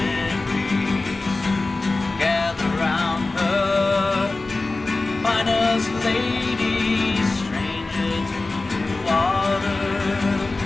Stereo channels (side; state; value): right; quieter; 3.3 dB